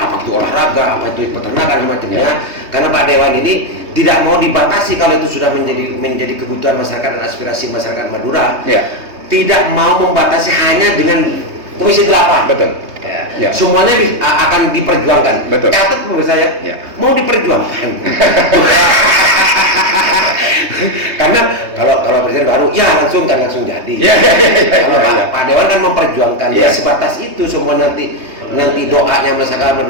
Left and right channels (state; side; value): late; left; 3.2 ms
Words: itu olahraga, apa itu peternakan macamnya. Karena Pak Dewan ini tidak mau dibatasi kalau itu sudah menjadi kebutuhan masyarakat dan aspirasi masyarakat Madura. Tidak mau membatasi hanya dengan Komisi 8. Betul. Semuanya akan diperjuangkan. Betul. Catat menurut saya, mau diperjuangkan. Karena kalau presiden baru, langsung jadi. Pak Dewan kan memperjuangkan. Sebatas itu semua nanti doanya masyarakat